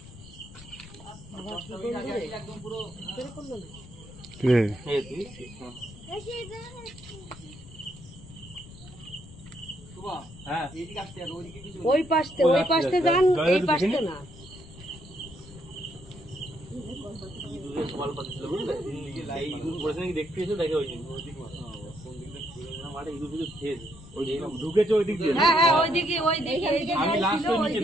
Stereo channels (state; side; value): noise; left; rumble, 17 dB below the sound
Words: হ্যাঁ এইদিকে আসতে আর ওইদিকে কিছু। ওই পাশতে যান, এই পাশতে না। সকাল পাচ্ছিল বুঝলে, এই ইঁদুর পড়েছে নাকি দেখতে এসে দেখে হয়েছে মাঠে ইঁদুর ফিদুর খেয়েছে। ওই যে ঢুকেছে ওই দিক দিয়ে। হ্যাঁ হ্যাঁ ওইদিকে ওইদিকে আমি লাস্ট নিচে